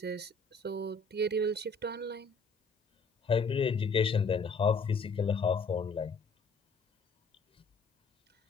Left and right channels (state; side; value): quieter; right; 3.8 dB